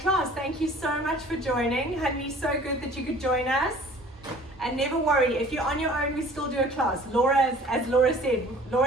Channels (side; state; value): both; normal; correlation 0.49